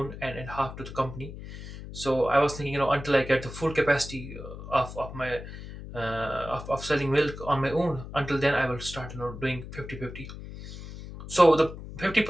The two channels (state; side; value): noise; left; hum, 11 dB below the sound